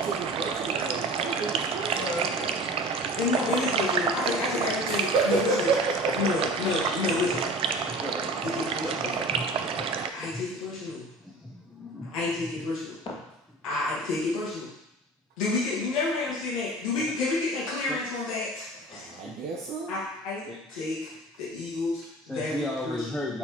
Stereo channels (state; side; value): normal; both; correlation 0.39